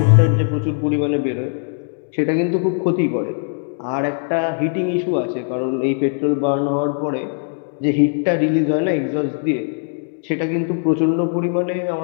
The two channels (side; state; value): right; silent; digital silence